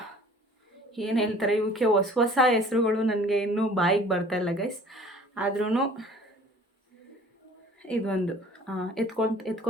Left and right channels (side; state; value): both; normal; correlation 0.49